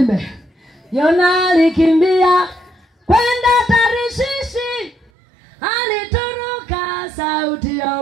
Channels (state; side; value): drops out; left; at 5.1 s